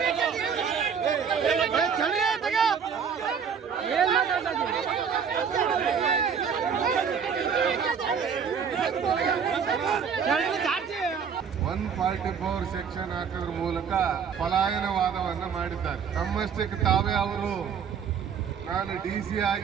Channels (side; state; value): left; quieter; 6.9 dB